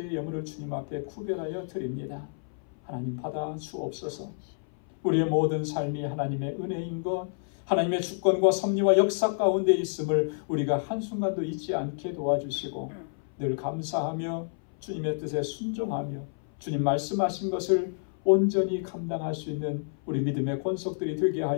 예물을 주님 앞에 구별하여 드립니다. 하나님 받아 주옵소서. 우리의 모든 삶이 하나님의 은혜인 것, 하나님의 주권과 섭리와 역사 가운데 있음을 우리가 한순간도 잊지 않게 도와주시고 늘 감사하며 주님의 뜻에 순종하며 주님 말씀하신 것을 온전히 감당할 수 있는 우리 믿음의 권속들이 되게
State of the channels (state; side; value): silent; right; 58 dB below the other